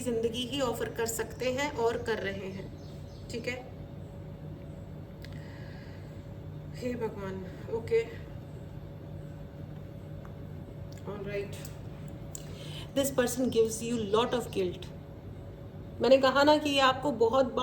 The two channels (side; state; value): both; identical; correlation 1.00